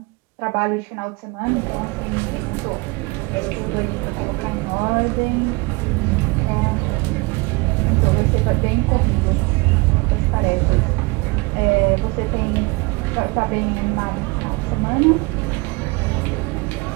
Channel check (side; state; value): left; quieter; 26.8 dB